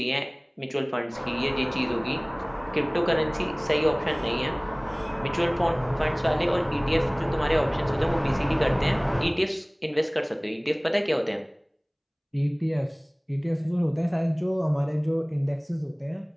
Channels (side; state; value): both; identical; correlation 1.00